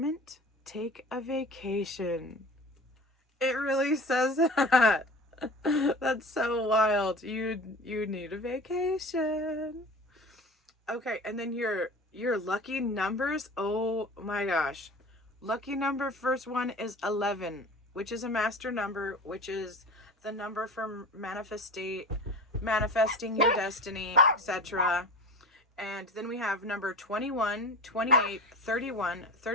Take a vacation. It really says that. That's so wild. You need a vacation. Okay, and then your lucky numbers. Oh my gosh. Lucky number, first one is 11, which is a master number, which is the number for manifesting your destiny, etc. And then we have number 21, 28, 31,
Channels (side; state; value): both; normal; correlation 0.35